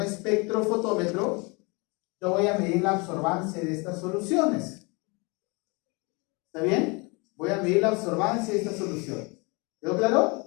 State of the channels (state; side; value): quieter; right; 29.1 dB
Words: espectrofotómetro, yo voy a medir la absorbancia de estas soluciones. ¿Está bien? Voy a medir la absorbancia de estas soluciones. ¿Quedó